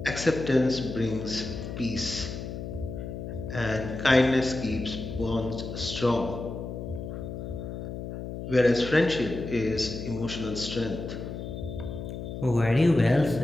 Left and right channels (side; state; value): left; noise; hum, 7 dB below the sound